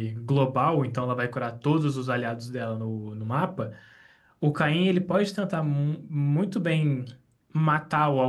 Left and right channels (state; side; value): identical; both; correlation 1.00